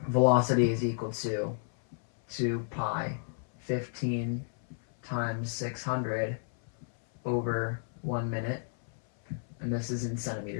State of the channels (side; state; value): right; silent; 56 dB below the other